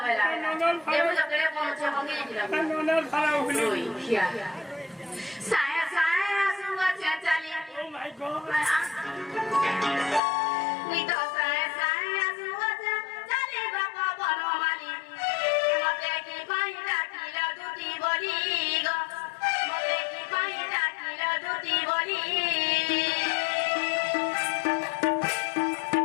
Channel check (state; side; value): drops out; right; at 10.2 s